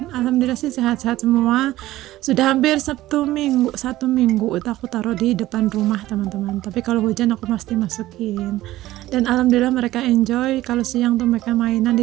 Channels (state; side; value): quieter; left; 15.8 dB